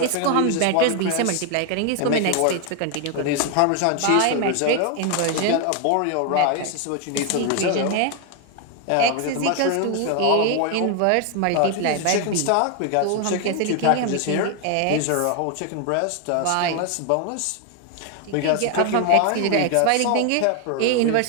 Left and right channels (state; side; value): different; both; correlation 0.01